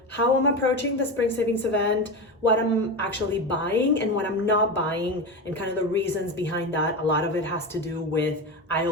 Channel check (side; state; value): both; normal; correlation 0.21